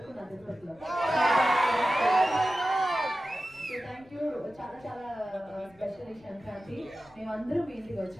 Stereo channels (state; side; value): noise; left; rumble, 28 dB below the sound